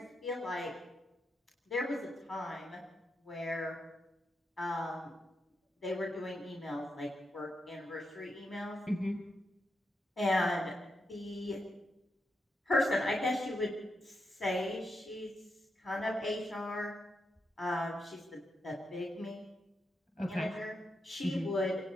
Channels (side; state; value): both; normal; correlation 0.84